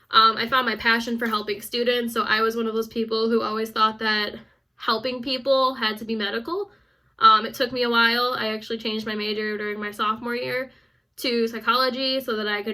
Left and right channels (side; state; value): both; identical; correlation 1.00